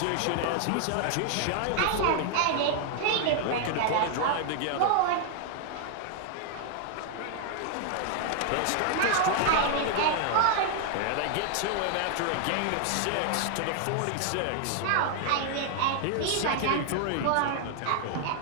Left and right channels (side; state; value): both; different; correlation 0.00